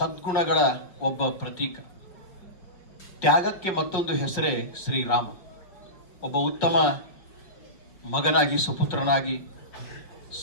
ಒಬ್ಬ ಪ್ರತೀಕ. ತ್ಯಾಗಕ್ಕೆ ಮತ್ತೊಂದು ಹೆಸರೇ ಶ್ರೀರಾಮ. ಒಬ್ಬ ಉತ್ತಮ ಮಗನಾಗಿ, ಸುಪುತ್ರನಾಗಿ,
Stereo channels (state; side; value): late; right; 5.5 ms